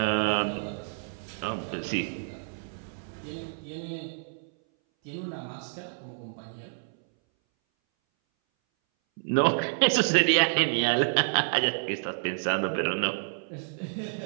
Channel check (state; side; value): silent; left; 59 dB below the other